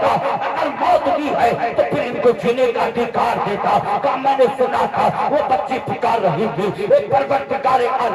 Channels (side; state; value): both; identical; correlation 1.00